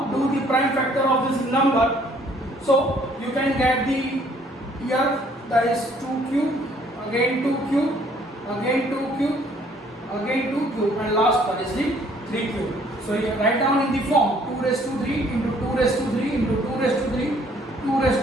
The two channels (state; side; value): normal; both; correlation 0.61